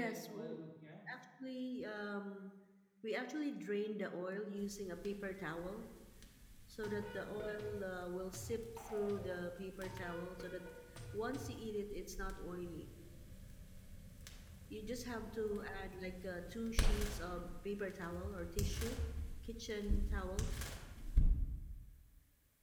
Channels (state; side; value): identical; both; correlation 1.00